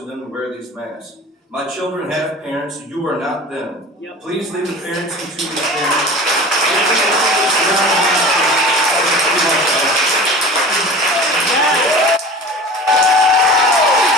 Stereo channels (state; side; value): normal; both; correlation 0.37